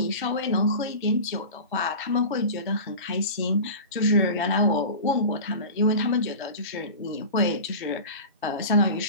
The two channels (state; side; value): inverted; both; correlation -0.32